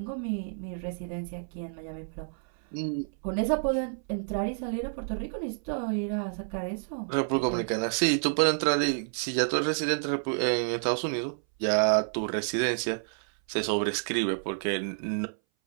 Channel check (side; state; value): left; silent; 58 dB below the other